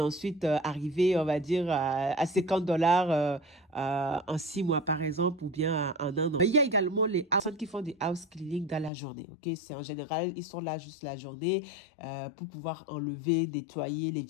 arriver, on va dire, à 50 $ en 6 mois, par exemple, ou bien en 1 an. Mais il y a également les personnes qui font des house cleaning dans la journée. Ok, c'est en général, ils sont là juste la journée pour pouvoir enlever, nettoyer les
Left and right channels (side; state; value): right; drops out; at 8.9 s